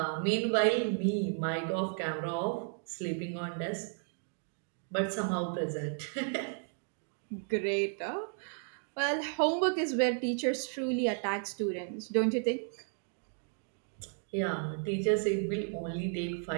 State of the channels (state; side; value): silent; left; 55 dB below the other